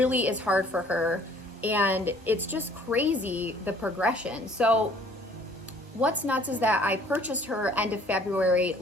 is hard for her. And it's just crazy, the progression. So what's nuts is that I purchased her end of February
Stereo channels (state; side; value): normal; both; correlation 0.56